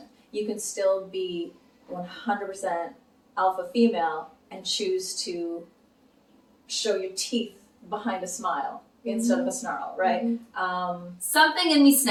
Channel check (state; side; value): identical; both; correlation 1.00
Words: You can still be 100% alpha female and choose to show your teeth behind a smile instead of a snarl, right? Something in me